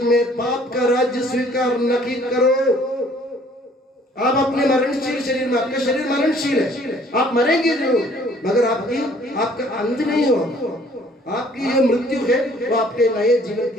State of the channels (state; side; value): normal; both; correlation 0.58